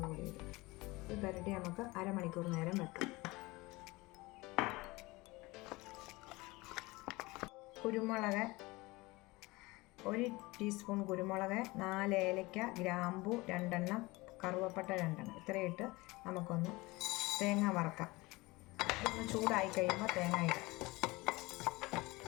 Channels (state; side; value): quieter; right; 22.4 dB